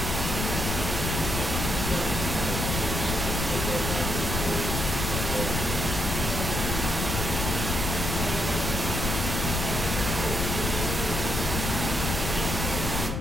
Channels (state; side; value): noise; left; rumble, 2 dB below the sound